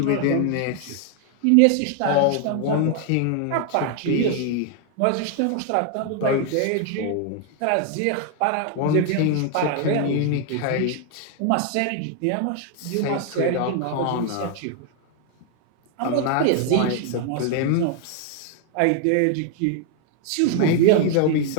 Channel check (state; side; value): different; both; correlation 0.00